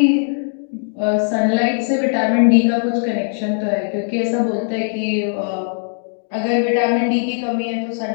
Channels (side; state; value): right; silent; digital silence